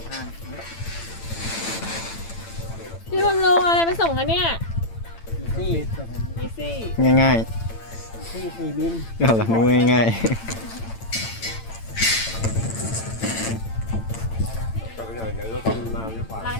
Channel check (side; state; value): right; late; 8.9 ms